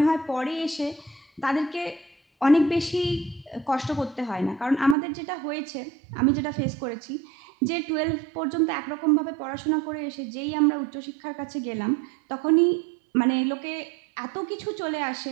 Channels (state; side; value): drops out; left; at 5.0 s